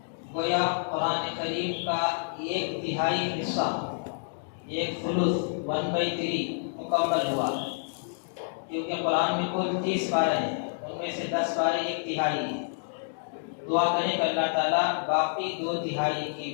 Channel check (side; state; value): right; silent; digital silence